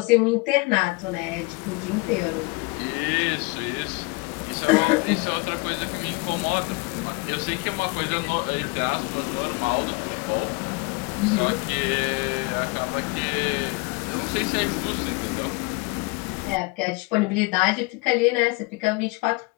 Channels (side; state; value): right; quieter; 26.2 dB